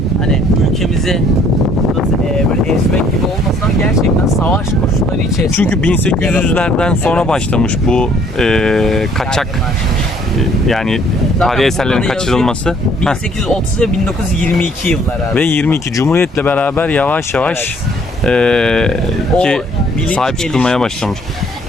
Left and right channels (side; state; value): both; normal; correlation 0.61